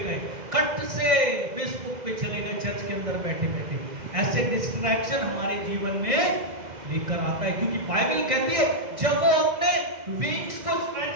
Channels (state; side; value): late; left; 2.0 ms